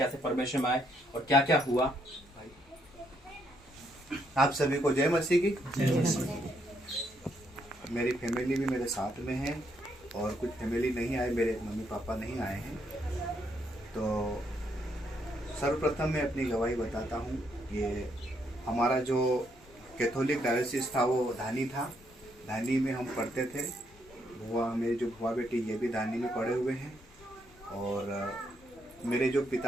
परमेश्वर में आए और क्या क्या हुआ। आप सभी को जय मसीह की। मेरी फैमिली भी मेरे साथ में है और कुछ फैमिली नहीं आए, मेरे मम्मी पापा नहीं आए हैं। तो सर्वप्रथम मैं अपनी गवाही बताता हूँ। ये हमारा जो कैथोलिक डायोसिस था वो धानी था। धानी में हम पढ़ते थे। मेरे जो भुआ बेटी ये भी धानी में पढ़े हुए हैं और मेरे जो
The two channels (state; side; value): normal; both; correlation 0.74